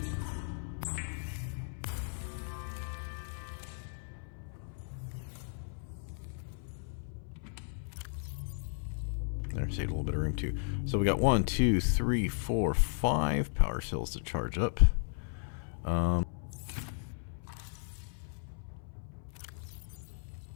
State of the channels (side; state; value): right; silent; 54 dB below the other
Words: There, saved a little bit of room too. So we got 1, 2, 3, 4, 5 power cells to charge up. I